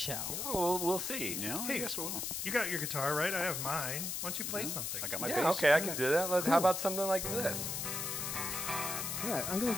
Oh, we'll see. Yeah, Hey, I guess we will. You got your guitar, right? I have mine. Why don't you play something? I got my Yeah, bass. okay, I can do that. How about something like this? All right, I'm going to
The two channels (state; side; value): noise; left; hiss, 2 dB below the sound